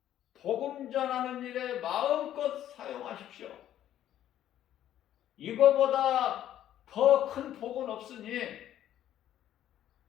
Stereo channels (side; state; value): right; quieter; 11.7 dB